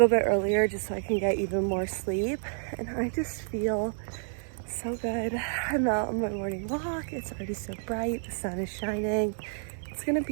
bit earlier just so I can get even more sleep. And I just feel so good. I'm out on my morning walk, it's already so bright, the sun is shining. It's gonna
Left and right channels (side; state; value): left; silent; digital silence